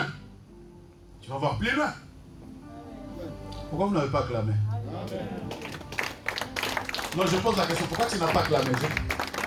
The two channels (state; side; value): identical; both; correlation 1.00